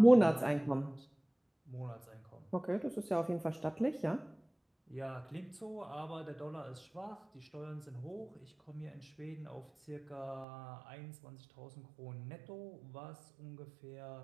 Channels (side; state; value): left; drops out; at 10.5 s